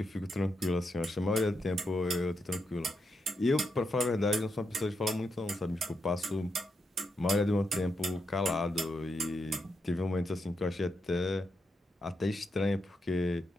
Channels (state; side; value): normal; both; correlation 0.83